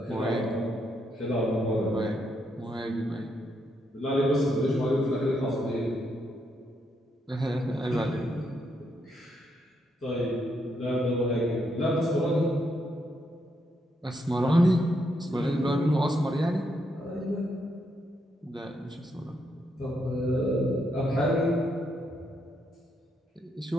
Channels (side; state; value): both; normal; correlation 0.78